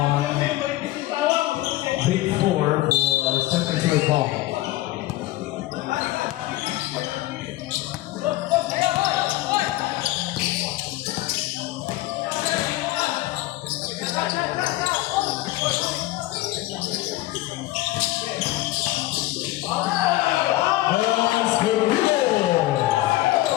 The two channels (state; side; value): quieter; right; 17.1 dB